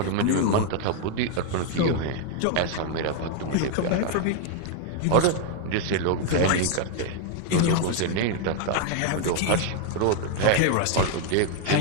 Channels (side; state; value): both; different; correlation 0.01